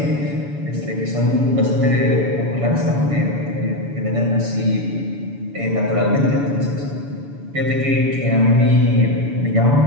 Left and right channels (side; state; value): left; late; 7.0 ms